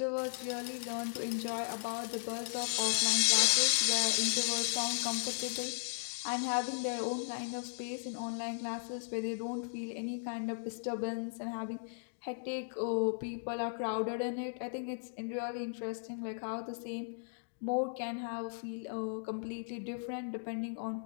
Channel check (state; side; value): silent; right; digital silence